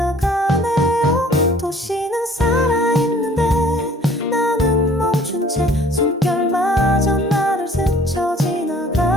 도시는 살아있는데 나는 멈춘 채 숨결마저 나를 스쳐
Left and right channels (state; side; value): normal; both; correlation 0.54